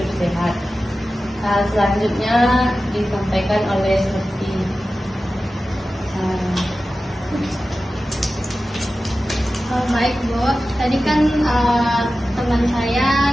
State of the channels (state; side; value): normal; both; correlation 0.94